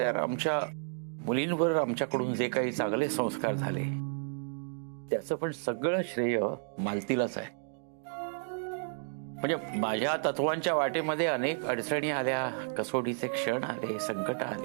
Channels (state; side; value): silent; left; digital silence